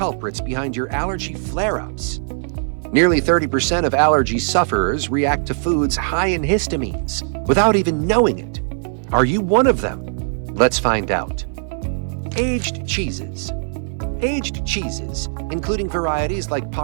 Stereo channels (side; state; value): left; silent; 60 dB below the other